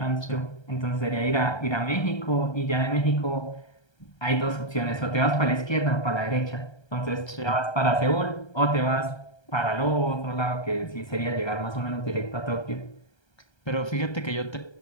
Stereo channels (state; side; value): late; right; 1.3 ms